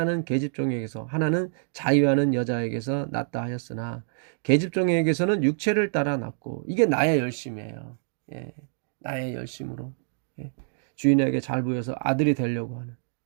계집종에게서 하나는 자유하는 여자에게서 낳다 하였으나 계집종에게서는 육체를 따라 낳고 이게 나의 열심이에요. 예, 나의 열심으로 예, 주인에게 잘 보여서 아들이 되려고 하는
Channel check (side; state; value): left; silent; digital silence